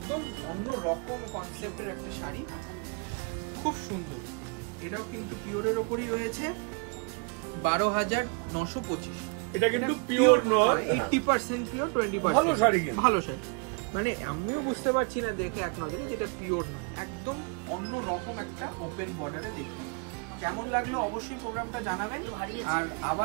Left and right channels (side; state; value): left; quieter; 35.0 dB